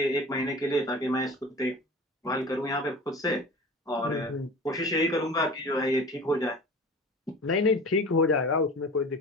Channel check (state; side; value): normal; both; correlation 0.37